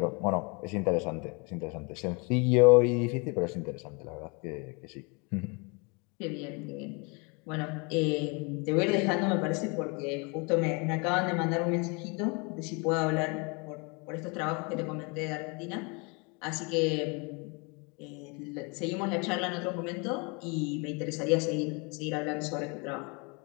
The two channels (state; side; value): quieter; right; 31.3 dB